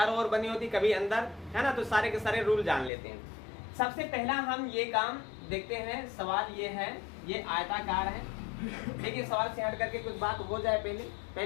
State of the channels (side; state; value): right; drops out; at 2.9 s